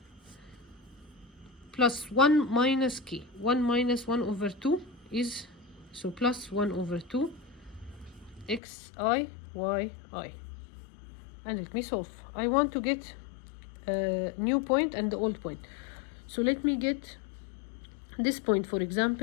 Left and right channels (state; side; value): drops out; right; at 8.6 s